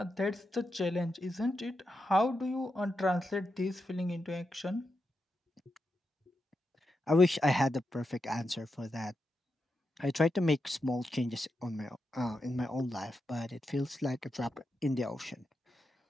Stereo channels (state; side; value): normal; both; correlation 0.87